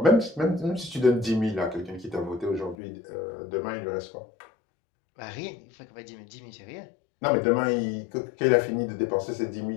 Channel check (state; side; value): drops out; right; at 2.8 s